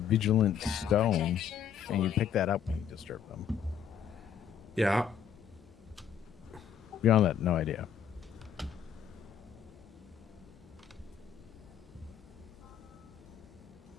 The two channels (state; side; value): quieter; right; 8.2 dB